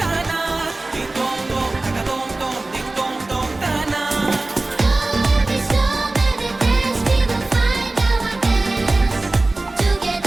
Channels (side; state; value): left; quieter; 3.0 dB